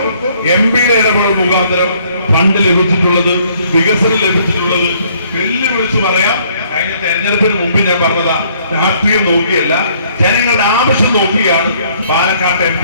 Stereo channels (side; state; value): both; inverted; correlation -0.64